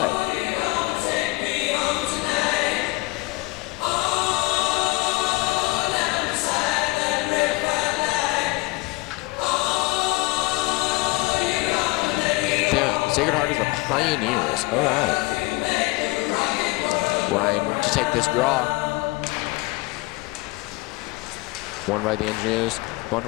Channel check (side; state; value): right; quieter; 23.3 dB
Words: Sacred Heart is the Pioneers. All right. Ryan to take this draw. Won by the Engineers.